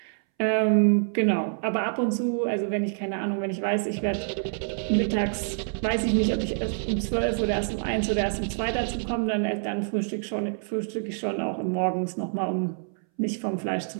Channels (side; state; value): left; silent; 60 dB below the other